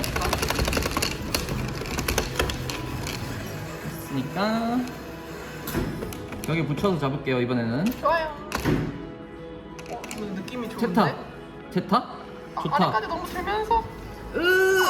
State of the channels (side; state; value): both; identical; correlation 1.00